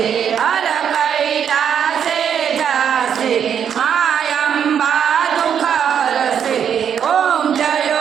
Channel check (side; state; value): left; quieter; 8.2 dB